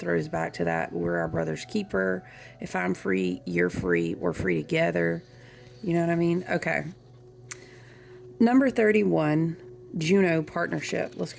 back to that. We're our brother's keeper. If I'm free, you're free. We're free together. You know what I mean? Okay. Number 31, Juno partnership. Let's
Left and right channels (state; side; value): identical; both; correlation 1.00